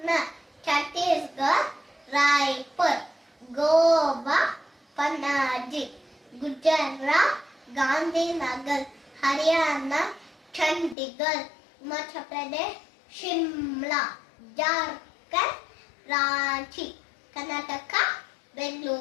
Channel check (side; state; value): right; drops out; at 11.0 s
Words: Chhattisgarh, Raipur. Goa, Panaji. Gujarat, Gandhinagar. Haryana, Chandigarh. Himachal Pradesh, Shimla. Jharkhand, Ranchi. Karnataka,